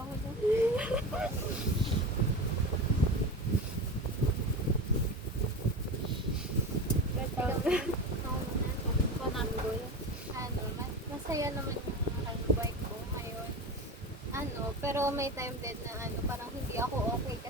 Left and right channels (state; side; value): normal; both; correlation 0.26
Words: na. Masaya naman yung buhay ko ngayon. Pero may time din na parang hindi ako okay